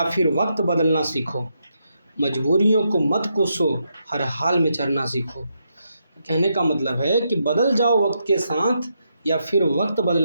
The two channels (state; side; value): inverted; both; correlation -0.81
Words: फिर वक्त बदलना सीखो, मजबूरियों को मत कोसो, हर हाल में चलना सीखो। कहने का मतलब है कि बदल जाओ वक्त के साथ या फिर वक्त